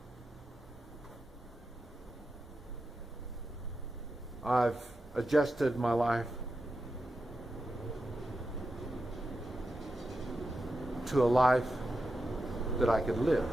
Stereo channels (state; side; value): normal; both; correlation 0.89